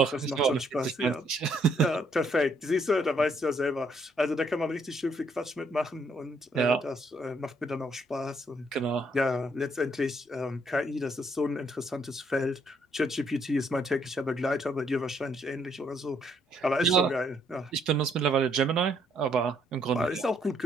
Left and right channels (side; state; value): both; normal; correlation 0.69